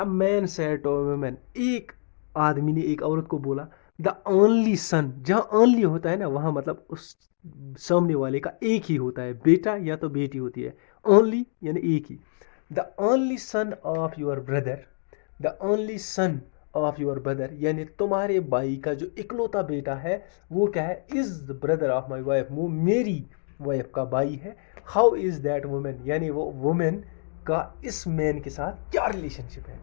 man said to woman, एक आदमी ने एक औरत को बोला, द ओनली सन, जहाँ ओनली होता है ना, वहाँ मतलब उस सामने वाले का एक ही होता है, बेटा या तो बेटी होती है। ओनली यानी एक ही। The only son of your brother, the only son of your brother, यानी तुम्हारे भाई का जो इकलौता बेटा है, वो क्या है, is the brother of my wife, वो मेरी वाइफ का भाई है। हाउ इज दैट वुमेन, यानी वो वुमेन का इस मैन के साथ क्या रिलेशनशिप है।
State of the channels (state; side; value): silent; right; digital silence